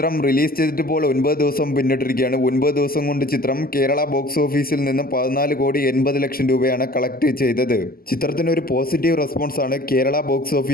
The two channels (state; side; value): late; right; 0.42 ms